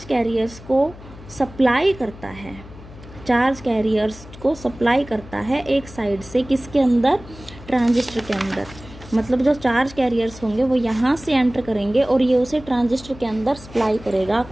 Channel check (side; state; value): left; noise; hum, 18 dB below the sound